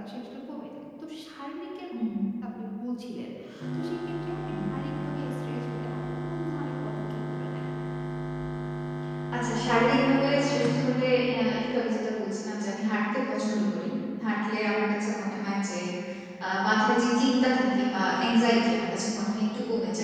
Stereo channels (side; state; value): both; identical; correlation 1.00